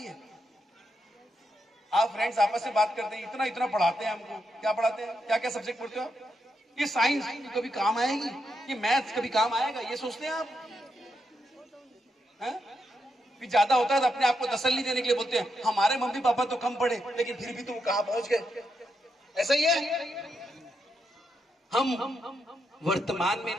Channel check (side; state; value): both; normal; correlation 0.83